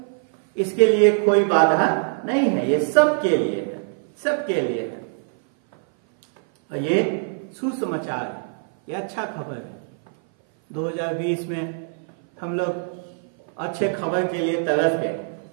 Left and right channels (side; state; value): left; silent; 58 dB below the other